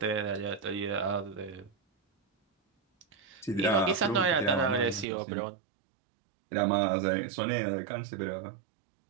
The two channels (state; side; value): drops out; left; at 5.1 s